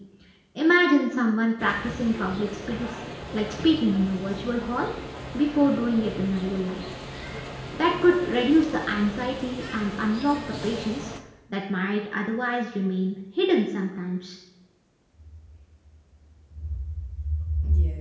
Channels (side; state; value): both; identical; correlation 1.00